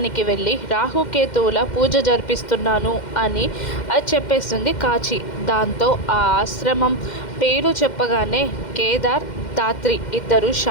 వెళ్ళి రాహుకేతువుల పూజ జరిపిస్తున్నాను అని చెప్పేస్తుంది కాచి. దాంతో ఆ ఆశ్రమం పేరు చెప్పగానే కేదార్, ధాత్రి ఇద్దరు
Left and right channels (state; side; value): late; right; 2.1 ms